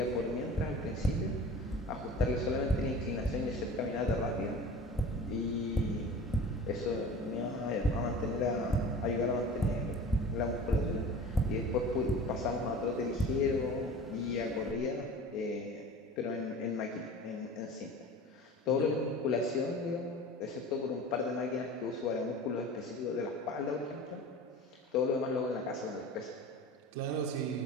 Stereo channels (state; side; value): normal; both; correlation 0.39